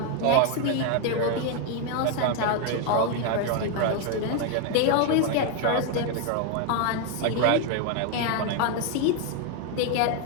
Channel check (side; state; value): both; different; correlation 0.01